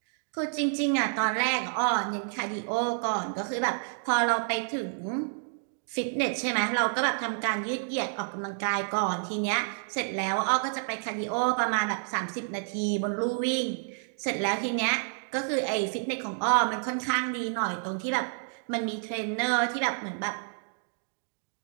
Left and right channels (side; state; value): left; silent; digital silence